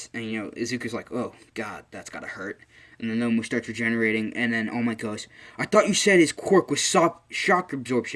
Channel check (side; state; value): both; identical; correlation 1.00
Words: And, Izuku's like, oh, God, that's gotta hurt. And the Nomu starts regenerating, and then All Might goes, "I thought you said his quirk was shock